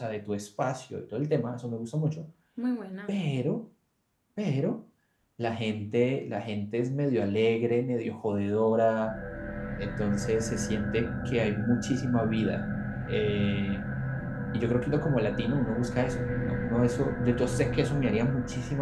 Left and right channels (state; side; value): identical; both; correlation 1.00